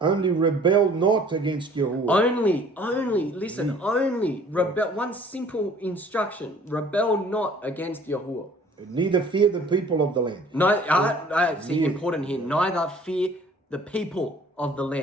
rebel not against Yahuah. Only rebel. One simple instruction: rebel not against Yahuah. Neither fear the people of the land. No, see, important here. Neither fear the people of the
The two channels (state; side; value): normal; both; correlation 0.53